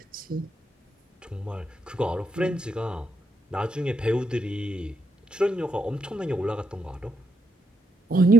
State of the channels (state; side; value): normal; both; correlation 0.79